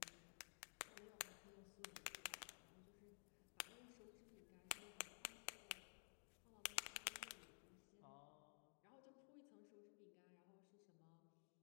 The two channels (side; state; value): right; silent; digital silence